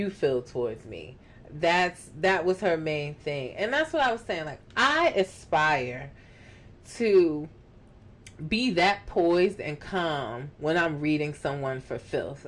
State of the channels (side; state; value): both; identical; correlation 1.00